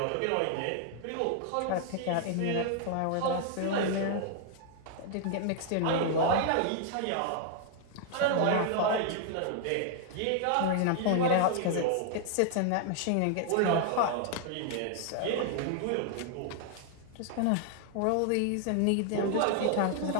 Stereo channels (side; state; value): both; different; correlation 0.00